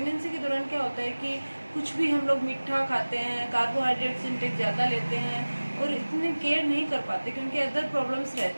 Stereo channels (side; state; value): both; inverted; correlation -1.00